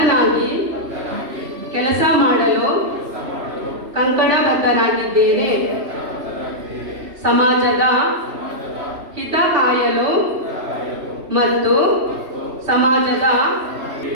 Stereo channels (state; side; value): late; left; 3.0 ms